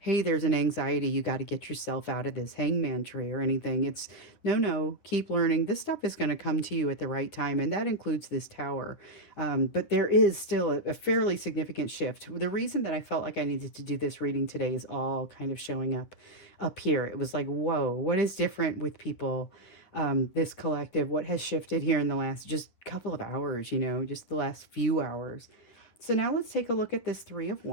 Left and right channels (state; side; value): late; right; 10 ms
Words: there's an anxiety, you got to get yourself out of this hangman tree or anything. It's no, keep learning. This stuff is going to come to you at the right time, and that includes this tower. But there is still a fairly significant shift. The reason that I felt like I needed to do this reading today is all kind of showing up here. It was like, whoa, what is different with people? This collective, what has shifted here in the last just couple of hours, just the last few hours. So now let's take a look at this Three of